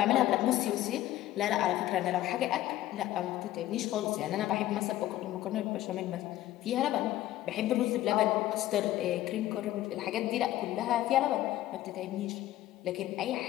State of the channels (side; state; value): right; quieter; 14.4 dB